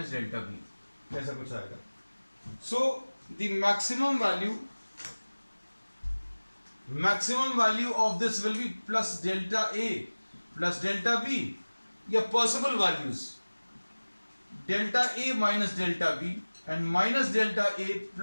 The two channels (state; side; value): inverted; both; correlation -1.00